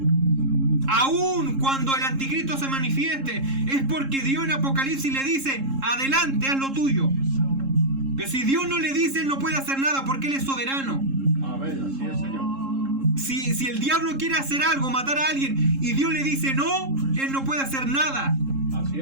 Aún cuando el anticristo se manifieste, es porque Dios en Apocalipsis le dice, adelante, haz lo tuyo. Pero si Dios no le dice, él no puede hacer nada porque él es soberano. Amén. Así es, Señor. Si el diablo quiere hacer algo, matar a alguien, y Dios le dice no, él no puede hacer nada. Así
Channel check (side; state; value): left; late; 3.7 ms